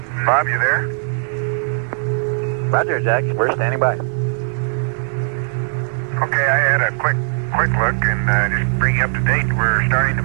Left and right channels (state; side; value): silent; left; digital silence